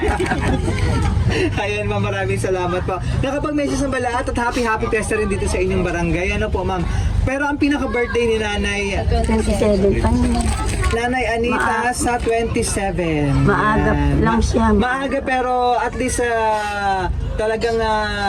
Ayan ma'am, maraming salamat po. Nakapag-message ng lahat at happy fiesta rin dito sa inyong barangay. Ano po ma'am? Pero ang pinaka-birthday ni Nanay 27 pa naman. Nanay Anita sa 27. Maaga lang siya. Maaga pero at least talagang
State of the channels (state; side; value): identical; both; correlation 1.00